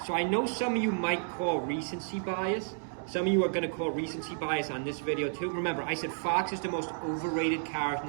So I know some of you might call recency bias. Some of you are going to call recency bias on this video too. Remember, I said Fox is the most overrated character in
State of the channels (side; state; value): left; silent; digital silence